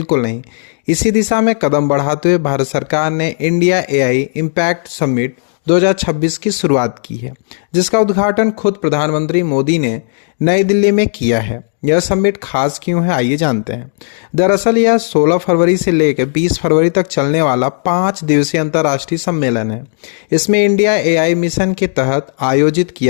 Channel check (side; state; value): right; silent; digital silence